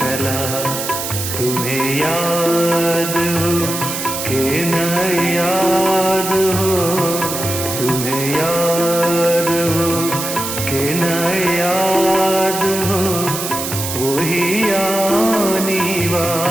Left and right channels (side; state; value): right; noise; hiss, 5 dB below the sound